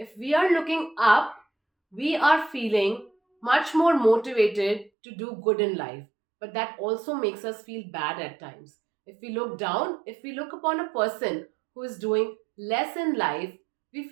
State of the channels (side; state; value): left; drops out; at 4.9 s